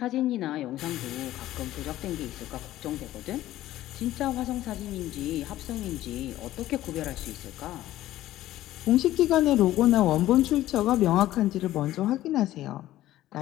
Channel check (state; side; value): quieter; right; 14.5 dB